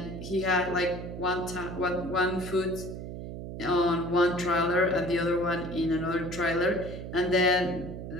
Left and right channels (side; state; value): right; noise; hum, 8 dB below the sound